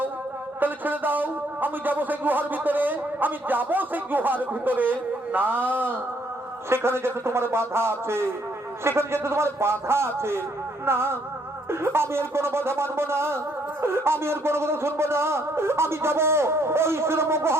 তাহলে ছেড়ে দাও। আমি যাবো সেই গুহার ভিতরে, আমি যাবো সেই গুহার ভিতরে। না, সেখানে যেতে তোমার বাধা আছে, সেখানে যেতে তোমার বাধা আছে। না, আমি আর কোনো বাধা মানবো না, আমি আর কোনো কথা শুনবো না। আমি যাবো ওই সুরম্য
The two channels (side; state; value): both; normal; correlation 0.69